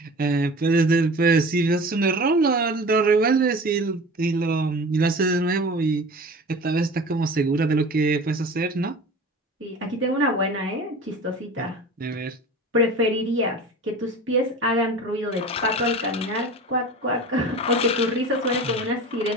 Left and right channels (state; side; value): normal; both; correlation 0.37